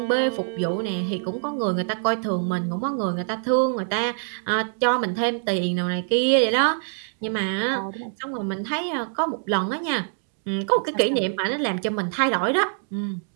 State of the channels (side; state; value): left; silent; digital silence